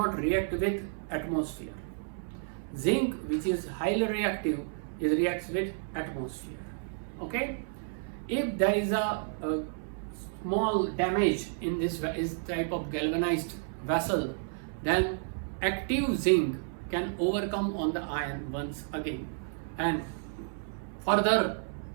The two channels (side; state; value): left; silent; 57 dB below the other